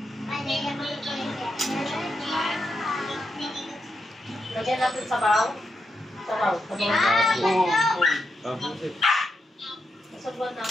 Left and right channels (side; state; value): both; normal; correlation 0.84